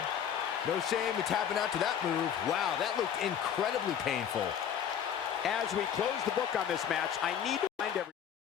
No shame in tapping out to that move. Wow, that looked incredibly painful. As we close the book on this match, I need to find every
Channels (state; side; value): quieter; right; 8.7 dB